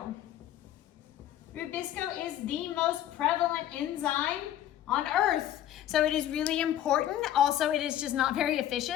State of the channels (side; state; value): right; quieter; 11.9 dB